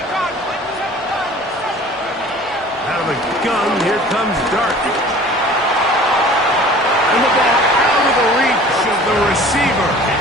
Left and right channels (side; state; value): both; normal; correlation 0.46